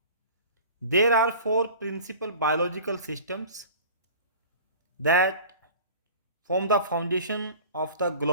there are four principal biological systems that form the foundation of the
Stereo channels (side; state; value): both; inverted; correlation -0.41